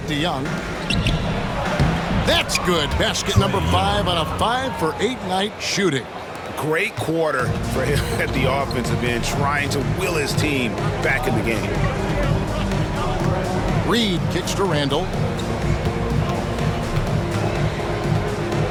to Young. That's good. Basket number 5 on a 5 for 8 night shooting. Great quarter for him at the offensive end, trying to will his team back in the game. Reed kicks to Randall.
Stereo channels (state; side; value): identical; both; correlation 1.00